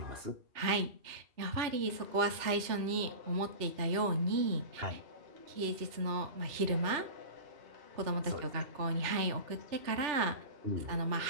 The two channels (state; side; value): late; left; 2.7 ms